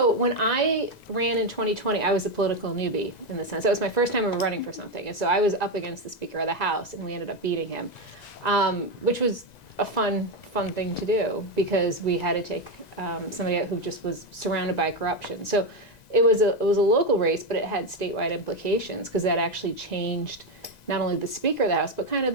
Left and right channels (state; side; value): late; right; 1.9 ms